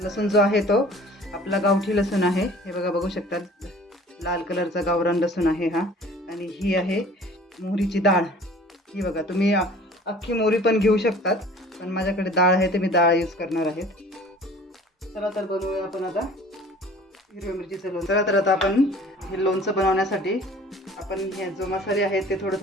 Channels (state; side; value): normal; both; correlation 0.48